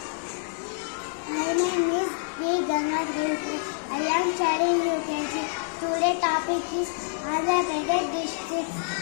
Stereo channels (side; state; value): right; silent; 55 dB below the other